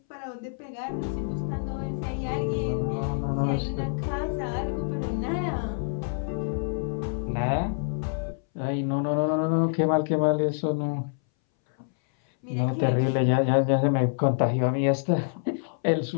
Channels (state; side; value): silent; right; 60 dB below the other